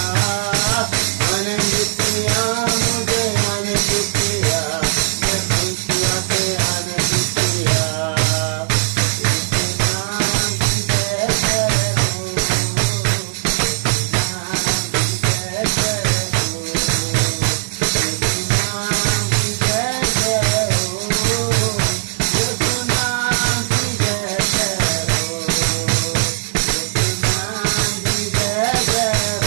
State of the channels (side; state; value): left; silent; digital silence